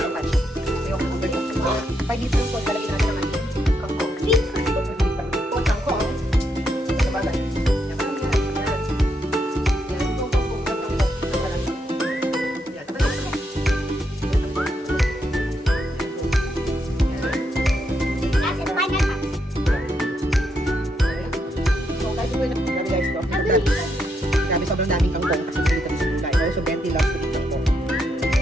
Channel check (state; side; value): normal; both; correlation 0.79